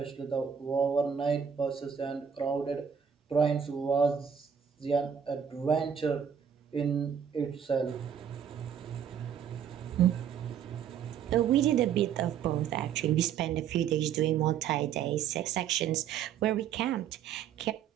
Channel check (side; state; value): left; quieter; 8.0 dB